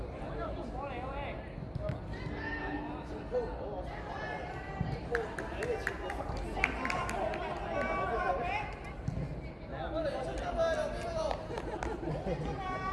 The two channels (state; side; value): identical; both; correlation 1.00